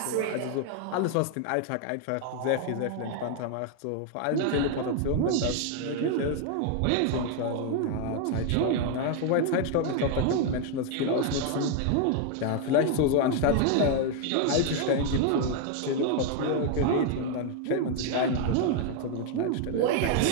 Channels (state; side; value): different; both; correlation 0.00